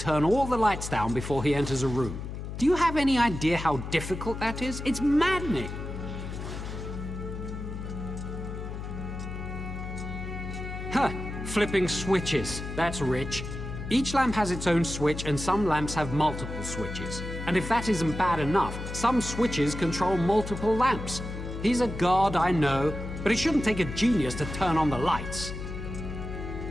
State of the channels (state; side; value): noise; left; hum, 7 dB below the sound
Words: all the lights down before he enters a room. Do you have any idea how difficult that is? It's maddening! Huh! Flipping switches. That's rich. Each lamp has its own switch, and some lamps have multiple switches. And if that isn't bad enough, some switches control multiple lamps. He's a god, I know, but it shouldn't take a genius to turn on the lights.